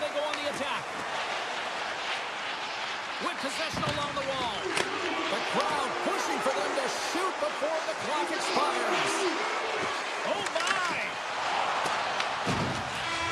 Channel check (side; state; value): both; identical; correlation 1.00